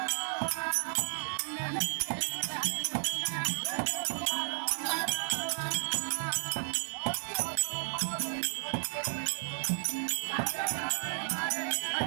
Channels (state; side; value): silent; left; 56 dB below the other